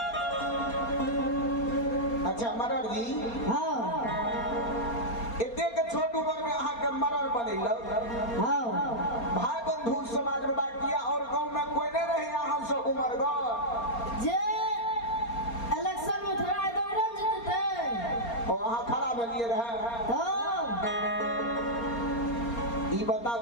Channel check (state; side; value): late; right; 4.3 ms